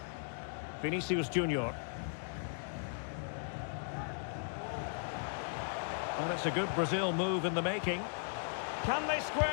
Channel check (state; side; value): silent; right; digital silence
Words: Vinicius Junior. Well, it's a good Brazil move in the making. Can they